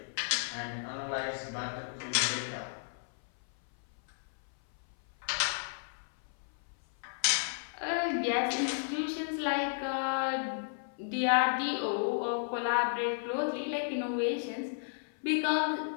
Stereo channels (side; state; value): right; silent; 56 dB below the other